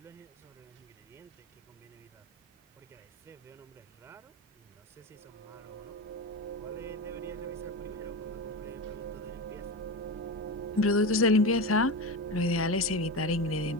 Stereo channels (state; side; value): normal; both; correlation 0.21